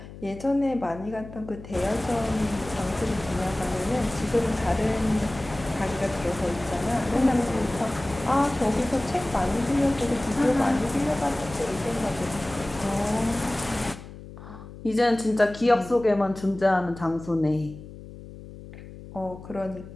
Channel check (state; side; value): noise; left; hum, 15 dB below the sound